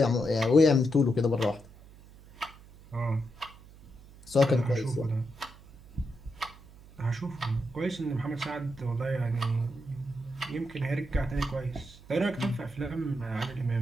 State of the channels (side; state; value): right; noise; hum, 21 dB below the sound